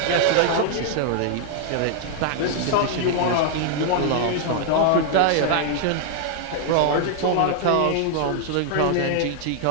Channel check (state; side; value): different; both; correlation 0.00